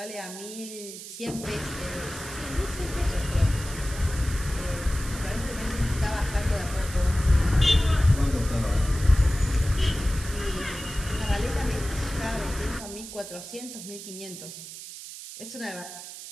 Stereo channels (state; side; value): noise; right; hiss, 12 dB below the sound